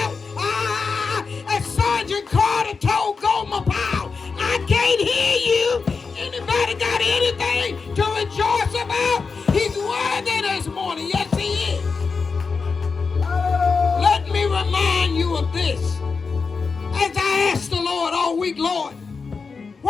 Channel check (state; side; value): quieter; right; 4.9 dB